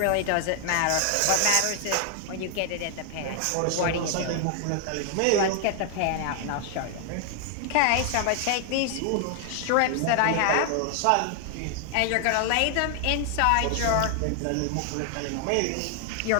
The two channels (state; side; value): different; both; correlation 0.00